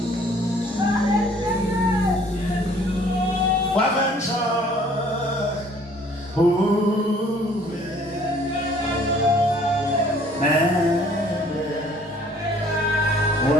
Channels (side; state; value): both; normal; correlation 0.57